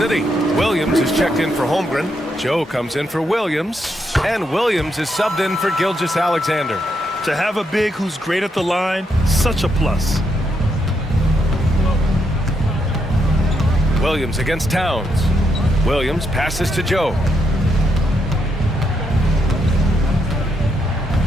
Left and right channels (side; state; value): both; normal; correlation 0.79